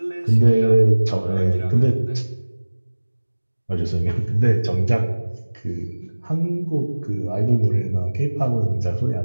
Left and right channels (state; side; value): inverted; both; correlation -1.00